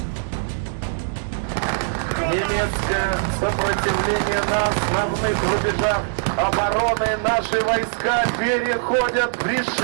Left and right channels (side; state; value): left; silent; digital silence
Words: немецкое сопротивление на основных рубежах обороны. Наши войска переходят в